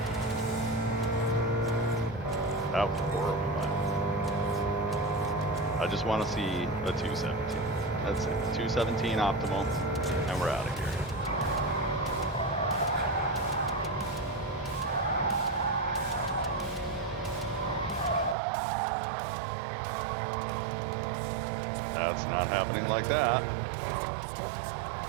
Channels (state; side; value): drops out; left; at 18.4 s